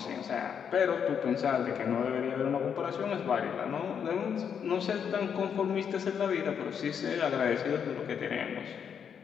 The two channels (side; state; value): right; quieter; 7.5 dB